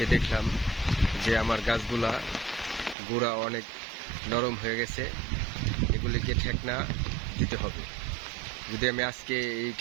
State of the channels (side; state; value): left; drops out; at 3.0 s